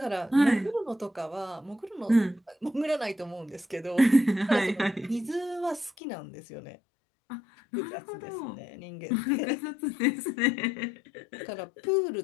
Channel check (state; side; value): drops out; right; at 5.9 s